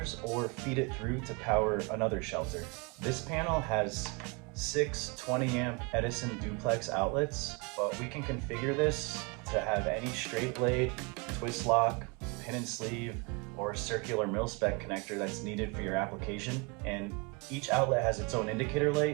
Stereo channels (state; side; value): quieter; left; 30.4 dB